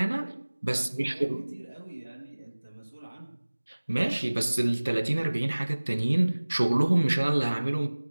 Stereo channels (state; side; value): inverted; both; correlation -1.00